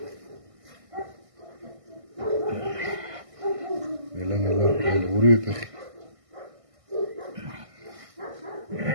ნელა, ორივე ფეხი.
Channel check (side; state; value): left; late; 1.6 ms